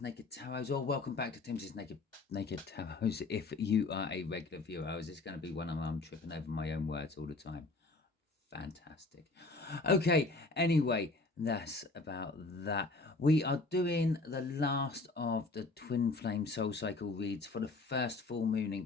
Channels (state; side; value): quieter; right; 3.5 dB